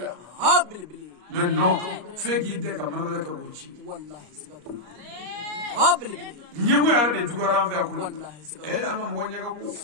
mais non fe ki de ka manabere ka bochi wallahi sigatu ñemu ya de dugara fa ko e anga mo ñaga ko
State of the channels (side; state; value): left; late; 33 ms